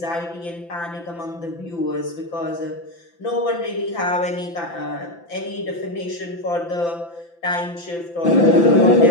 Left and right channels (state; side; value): late; right; 5.9 ms